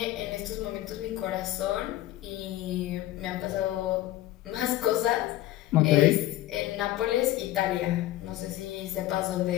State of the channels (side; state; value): right; quieter; 15.0 dB